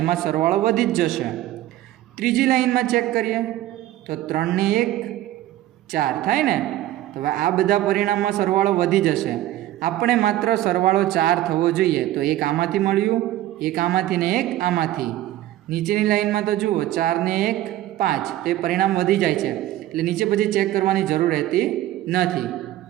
એમાં સરવાળો વધી જ જશે। ત્રીજી લાઈનમાં ચેક કરીએ તો 3 ને 1 4 થાય ને, તો હવે આ બધા પરિણામમાં સરવાળો વધી જશે। આપણે માત્ર સરવાળો 4 થવો જોઈએ, તો એક આમાંથી મળ્યું, એક આમાંથી ને એક આમાંથી। નીચેની લાઈનમાં તો જુઓ, 4 ને 1 5, તો એ પરિણામ વધી જાય છે, એટલે નીચે પછી ચેક કરવાની જરૂર રહેતી નથી।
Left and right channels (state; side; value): quieter; left; 14.4 dB